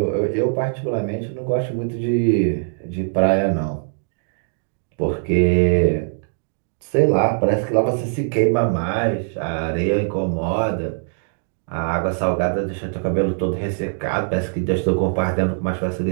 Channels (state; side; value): silent; left; digital silence